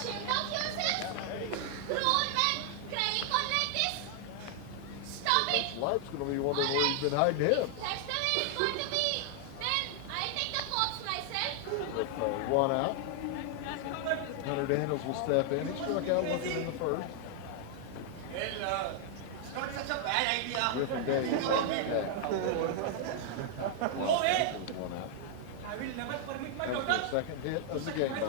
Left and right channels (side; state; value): both; different; correlation 0.00